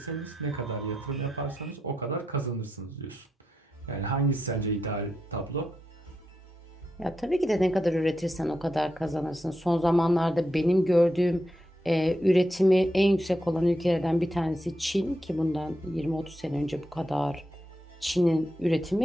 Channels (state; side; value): normal; both; correlation 0.85